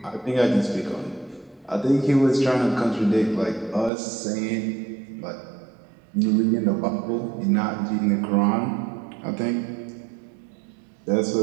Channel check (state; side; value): drops out; left; at 3.9 s